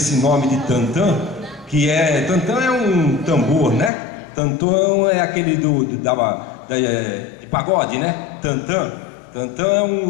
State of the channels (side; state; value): right; drops out; at 3.9 s